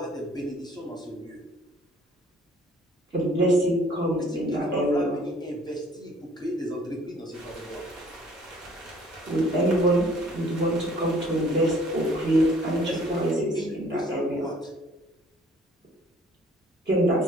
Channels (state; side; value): normal; both; correlation 0.57